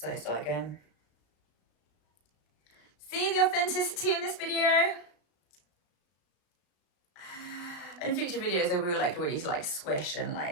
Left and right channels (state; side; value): late; right; 34 ms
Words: start again. See the authenticity in this video? In future videos I will like really like swish and